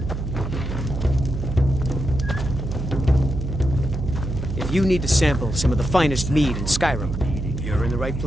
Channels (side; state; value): right; noise; hum, 4 dB below the sound